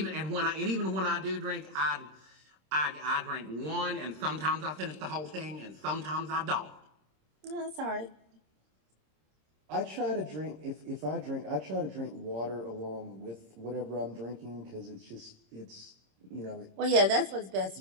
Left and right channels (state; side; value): late; left; 26 ms